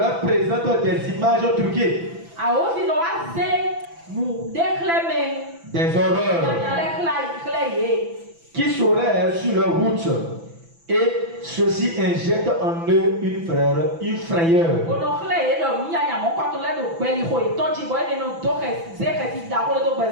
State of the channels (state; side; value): late; left; 6.0 ms